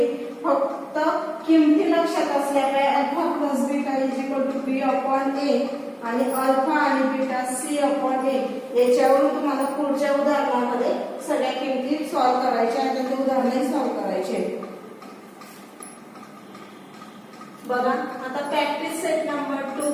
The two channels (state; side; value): identical; both; correlation 1.00